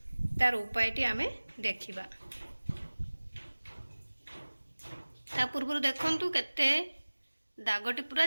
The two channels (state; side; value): inverted; both; correlation -1.00